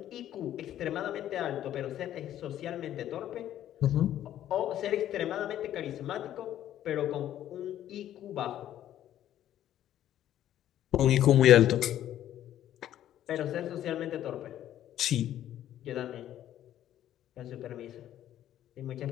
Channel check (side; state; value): right; quieter; 11.9 dB